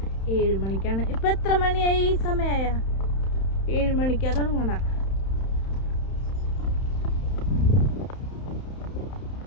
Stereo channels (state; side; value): late; right; 31 ms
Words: 7 മണിക്കാണ്. ഇപ്പൊ എത്ര മണിയായി? സമയമായ 7 മണിക്കാ തുടങ്ങണ.